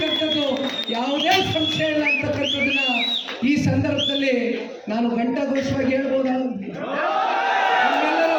ಯಾವುದೇ ಸಂಶಯ ಇಲ್ಲ ಅಂತಕ್ಕಂಥದ್ದನ್ನ ಈ ಸಂದರ್ಭದಲ್ಲಿ ನಾನು ಘಂಟಾಘೋಷವಾಗಿ ಹೇಳ್ಬೋದಾ? ನಮ್ಮೆಲ್ಲರ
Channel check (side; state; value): both; identical; correlation 1.00